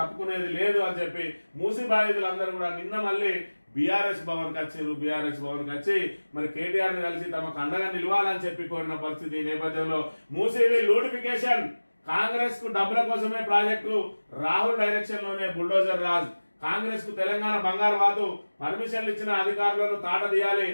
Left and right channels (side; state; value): both; inverted; correlation -1.00